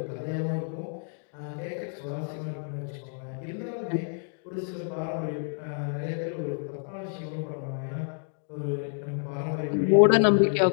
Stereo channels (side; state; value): right; silent; 55 dB below the other